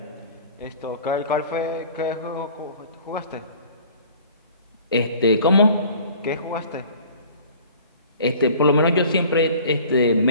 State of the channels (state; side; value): inverted; both; correlation -0.48